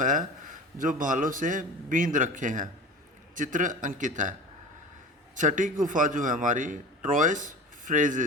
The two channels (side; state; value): both; normal; correlation 0.35